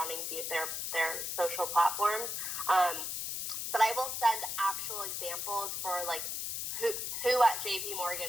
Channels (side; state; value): left; noise; hiss, 3 dB below the sound